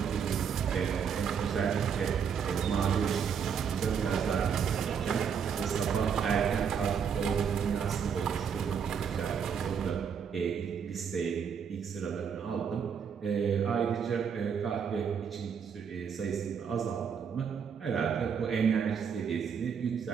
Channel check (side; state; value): left; quieter; 7.1 dB